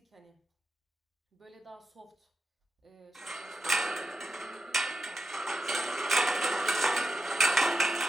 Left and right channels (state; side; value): normal; both; correlation 0.88